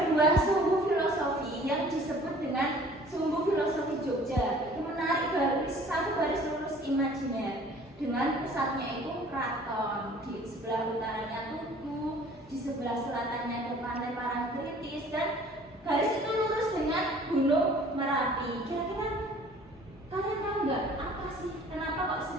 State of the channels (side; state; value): both; normal; correlation 0.51